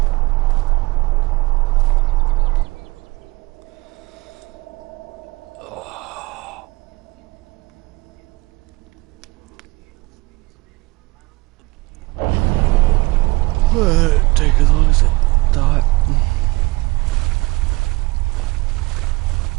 Well, it take as long as it thought.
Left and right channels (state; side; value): quieter; left; 22.6 dB